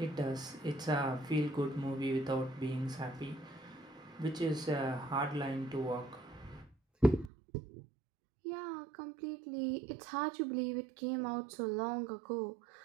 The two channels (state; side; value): drops out; left; at 7.3 s